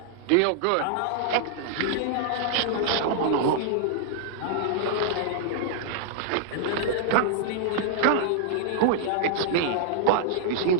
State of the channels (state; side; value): different; both; correlation -0.01